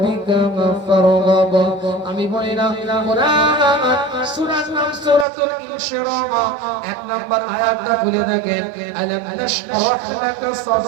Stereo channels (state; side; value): drops out; left; at 5.2 s